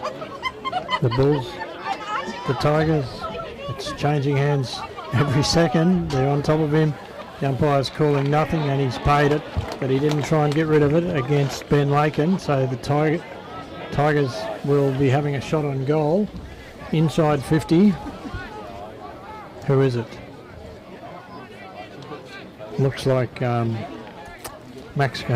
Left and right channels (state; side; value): identical; both; correlation 1.00